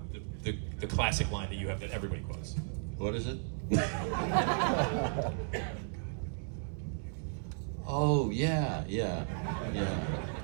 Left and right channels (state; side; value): silent; left; 55 dB below the other